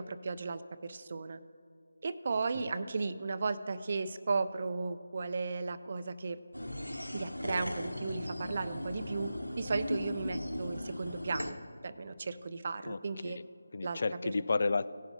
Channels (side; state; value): both; inverted; correlation -0.91